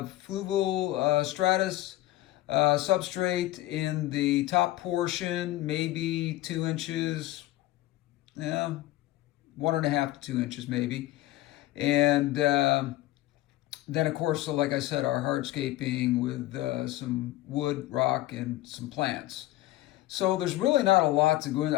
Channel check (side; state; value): right; quieter; 16.0 dB